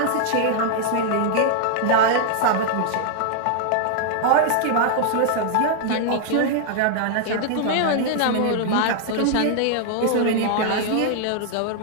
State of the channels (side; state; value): both; different; correlation 0.00